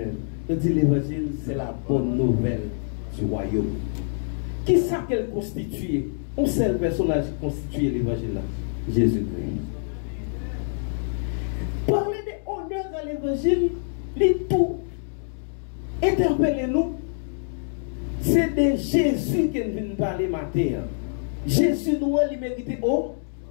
Je dis l'évangile, c'est la bonne nouvelle du royaume. Qui est-ce qu'elle constitue? Un seul personnage qui constitue l'évangile là, Jésus-Christ. Parler de honneur à l'évangile, les tout interpellez-nous. C'est de Jésus qui vient parler matin. Jésus nous a mérité au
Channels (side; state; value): right; silent; digital silence